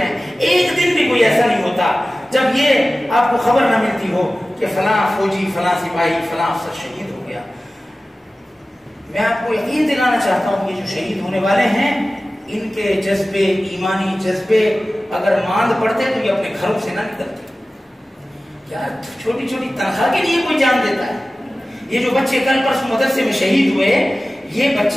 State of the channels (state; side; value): normal; both; correlation 0.96